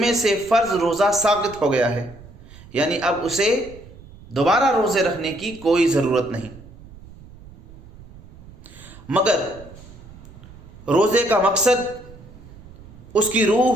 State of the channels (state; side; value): noise; right; rumble, 19 dB below the sound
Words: سے فرض روزہ ساقط ہو گیا ہے، یعنی اب اسے دوبارہ روزے رکھنے کی کوئی ضرورت نہیں۔ مگر روزے کا مقصد، اس کی